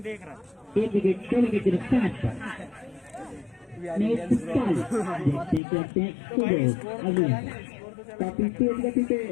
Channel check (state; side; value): drops out; right; at 5.6 s